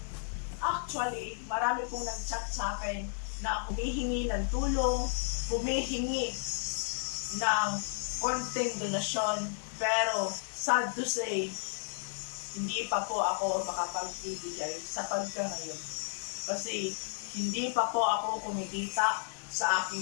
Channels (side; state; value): right; silent; digital silence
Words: Actually, marami pong nag-chat sa akin na humihingi ng tulong, humihingi ng konting donasyon, pero sad to say, hindi pa po ako makapagbibigay sa pagka-ngayon. Kasi hindi pa po ako kumikita sa